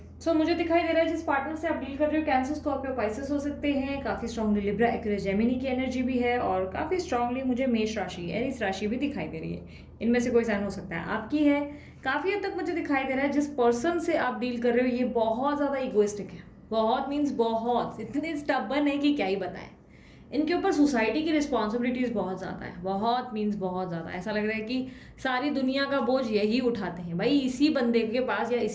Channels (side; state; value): both; identical; correlation 1.00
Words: सो मुझे दिखाई दे रहा है जिस पार्टनर से आप डील कर रहे हो, कैंसर, स्कॉर्पियो, पाइसेस हो सकते हैं। काफी स्ट्रांगली लिब्रा, एक्वेरियस, जेमिनी की एनर्जी भी है, और काफी स्ट्रांगली मुझे मेष राशि, एरीज राशि भी दिखाई दे रही है। इनमें से कोई साइन हो सकता है आपकी है। काफी हद तक मुझे दिखाई दे रहा है जिस पर्सन से आप डील कर रहे हो ये बहुत ज्यादा इगोइस्टिक है। बहुत मीन्स बहुत, इतने स्टबर्न है कि क्या ही बताएं। इनके ऊपर सोसाइटी की रिस्पॉन्सिबिलिटीज बहुत ज़्यादा है, बहुत मीन्स बहुत ज़्यादा। ऐसा लग रहा है कि सारी दुनिया का बोझ यही उठाते हैं भाई, इसी बंदे के पास या